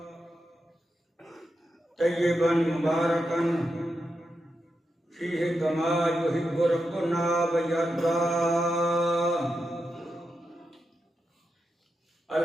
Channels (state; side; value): normal; both; correlation 0.87